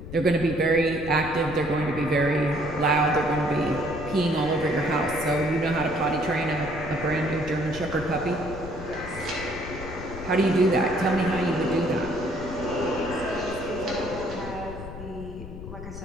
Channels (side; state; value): left; noise; rumble, 11 dB below the sound